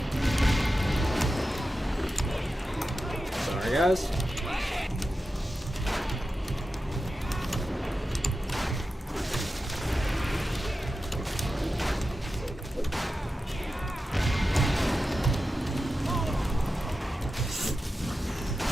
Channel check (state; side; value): normal; both; correlation 0.92